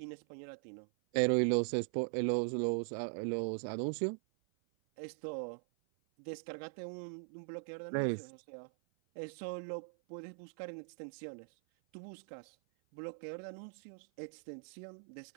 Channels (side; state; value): left; silent; 51 dB below the other